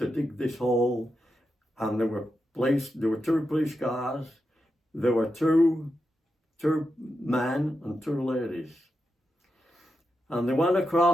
dig this hole, and there were 2 police cars, there were two men and 2 ladies. And they went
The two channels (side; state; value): both; normal; correlation 0.88